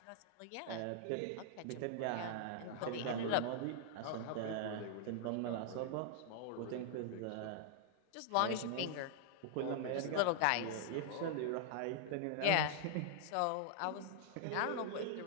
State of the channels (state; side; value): different; both; correlation -0.01